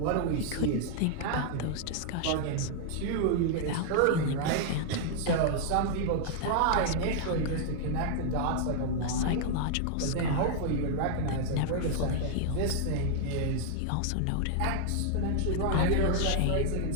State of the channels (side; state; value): both; different; correlation 0.00